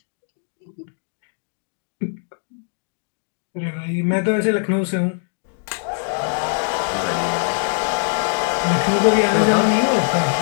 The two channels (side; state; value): right; silent; digital silence